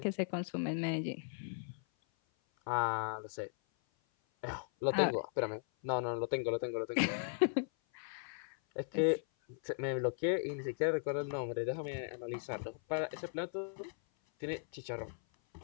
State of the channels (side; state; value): right; silent; 53 dB below the other